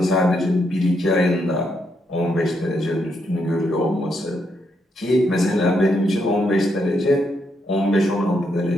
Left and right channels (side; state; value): both; normal; correlation 0.78